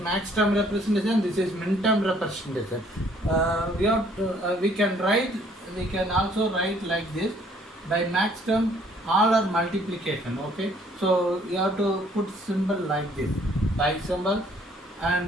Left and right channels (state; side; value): normal; both; correlation 0.61